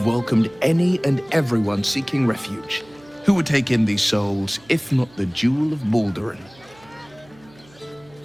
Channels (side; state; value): right; noise; hum, 27 dB below the sound